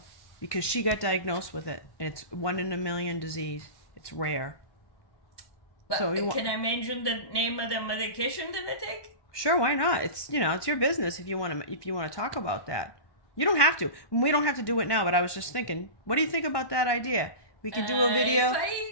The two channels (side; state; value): right; late; 1.2 ms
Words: because she got diagnosed with it. And it's 1 in a million disease. It's rare. But So you can I mention the name of the medication that I take? Sure, why not? It's it's your business if you want to talk about that. You don't have to. We don't have to do it now, but I was just thinking, what do you think about that idea? We could do a video. If